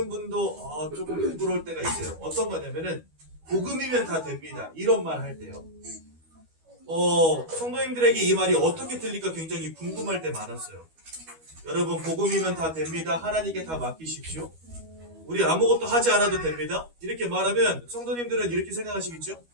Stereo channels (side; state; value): left; late; 12 ms